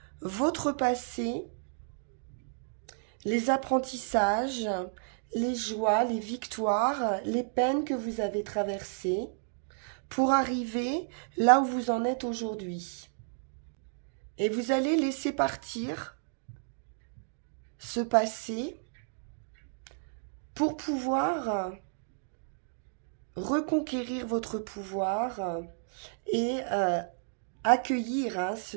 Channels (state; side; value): silent; left; digital silence